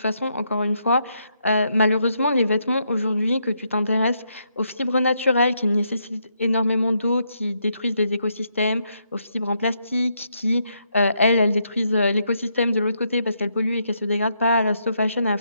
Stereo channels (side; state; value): both; inverted; correlation -0.78